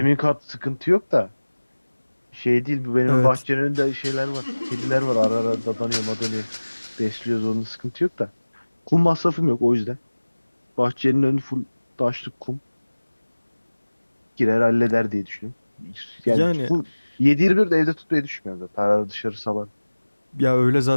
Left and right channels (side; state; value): both; inverted; correlation -1.00